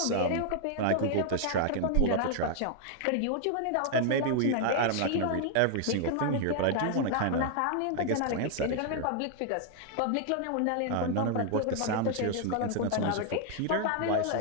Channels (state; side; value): different; both; correlation 0.00